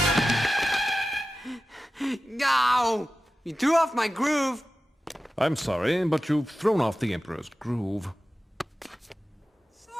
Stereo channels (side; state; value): both; normal; correlation 0.94